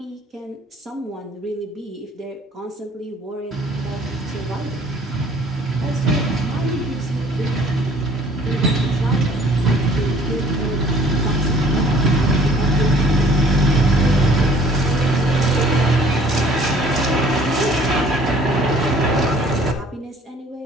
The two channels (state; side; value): normal; both; correlation 0.55